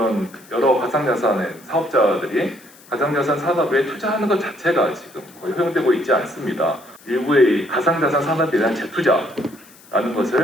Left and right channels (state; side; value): noise; left; hiss, 24 dB below the sound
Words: 여러 가상자산의 사업자들이 가상자산 산업에 투자하는 것 자체가 지금 거의 허용되고 있지 않습니다. 일부의 가상자산 산업에 대한 재투자라는